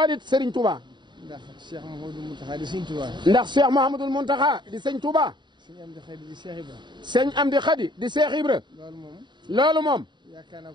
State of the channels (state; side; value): late; left; 0.22 ms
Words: it sëriñ Touba. ndax Cheikh Mouhamadou Mountakha di sëriñ Touba. ndax Cheikh Mouhamadou Mountakha di sëñ Touba. sëñ Amdi Khady di Cheikh Ibra. sëñ Amdi Khady di Cheikh Ibra. loolu moom. yaakaar naa